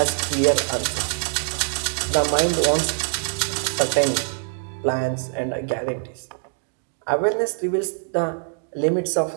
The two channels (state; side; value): silent; left; 63 dB below the other